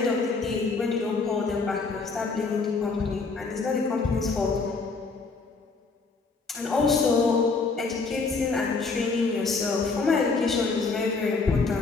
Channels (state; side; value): quieter; right; 4.2 dB